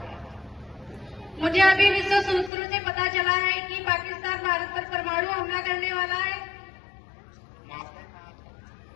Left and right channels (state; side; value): drops out; right; at 2.5 s